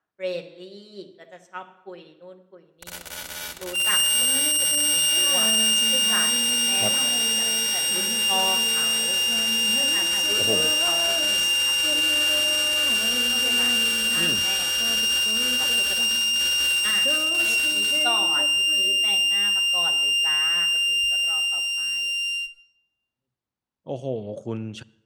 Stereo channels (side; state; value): both; identical; correlation 1.00